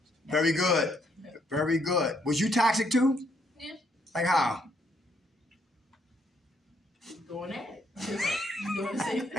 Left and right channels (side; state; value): both; normal; correlation 0.72